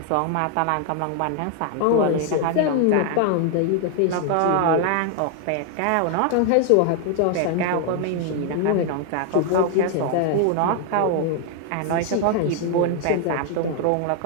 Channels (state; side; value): different; both; correlation 0.00